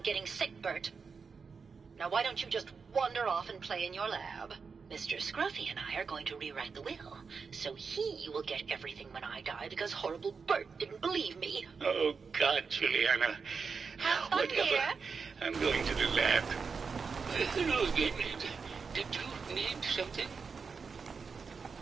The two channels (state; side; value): quieter; left; 5.3 dB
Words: sick, Bert. Now why don't you just wander off and play in your lab? Mr. Scruffy and I are going to rewrite the will, so he will get everything when I die because horrible Bert didn't believe me. Oh, God, Juliana. Have fun here. I'm going to the lab. Hello again. Did you need something?